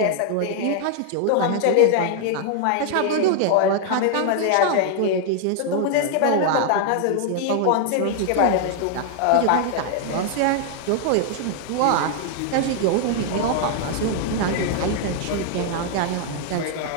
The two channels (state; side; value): different; both; correlation 0.00